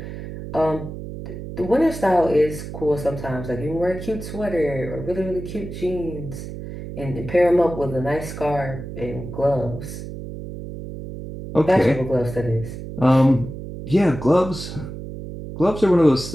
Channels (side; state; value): right; noise; hum, 10 dB below the sound